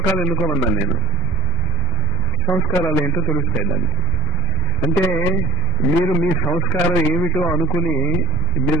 ఎన్నుకోమన్నాను నేను. సంస్కారాలు ఏంటో తెలుస్తాయి దానికి. అంటే మీరు మీ సంస్కారం ఏమిటో అనుకుని మీరు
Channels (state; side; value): normal; both; correlation 0.60